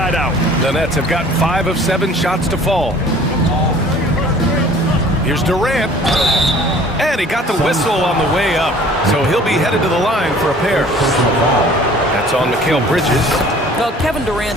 out. The Nets have gotten 5 of 7 shots to fall. Here's Durant. And he got the whistle on the way up, so he'll be headed to the line for a pair. That's on Mikal Bridges. Well, Kevin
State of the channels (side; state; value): both; normal; correlation 0.50